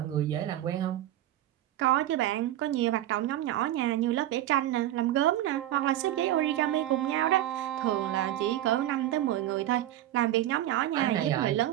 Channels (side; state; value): left; quieter; 13.4 dB